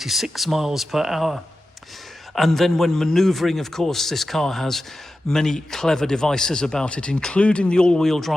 miles per hour. And then when manoeuvring, of course, this car has many clever devices about it, including the all-wheel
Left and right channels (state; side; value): normal; both; correlation 0.93